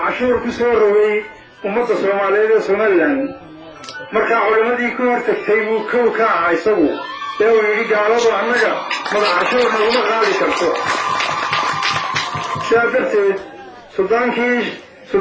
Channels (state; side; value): identical; both; correlation 1.00